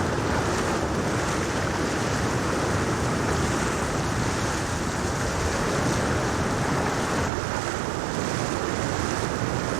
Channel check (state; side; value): drops out; left; at 7.3 s